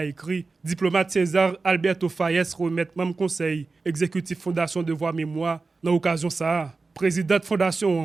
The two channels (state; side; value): quieter; left; 4.0 dB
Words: écrit, diplomate César Alberto Faes remet même conseil exécutif Fondation Devoir Mémoire dans l'occasion ça. Présidente